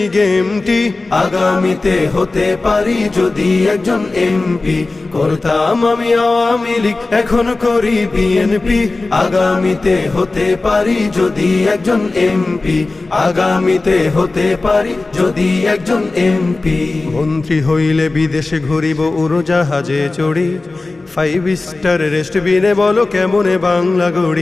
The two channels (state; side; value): quieter; right; 3.3 dB